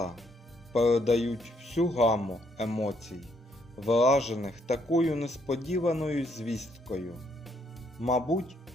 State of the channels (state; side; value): normal; both; correlation 0.71